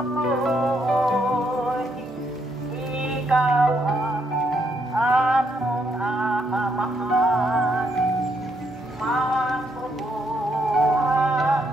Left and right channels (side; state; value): both; normal; correlation 0.75